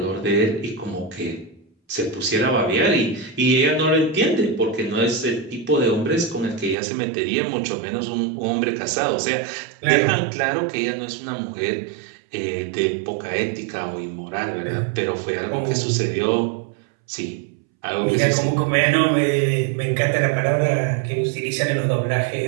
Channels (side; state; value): left; drops out; at 6.8 s